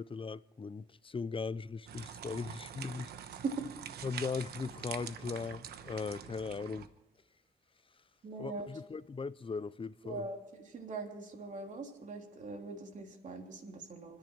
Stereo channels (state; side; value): normal; both; correlation 0.58